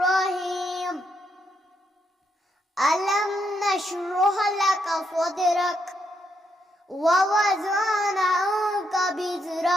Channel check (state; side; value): normal; both; correlation 0.78